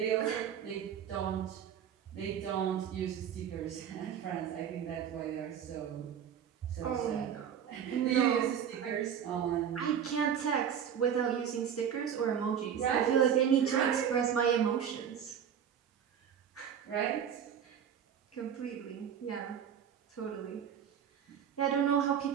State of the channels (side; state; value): left; quieter; 8.5 dB